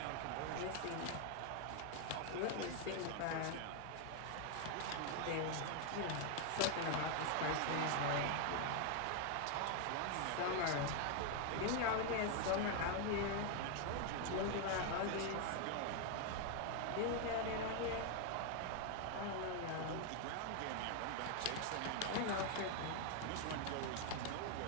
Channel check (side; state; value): both; different; correlation 0.01